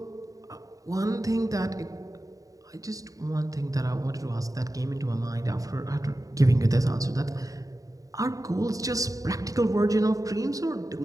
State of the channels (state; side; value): late; left; 0.17 ms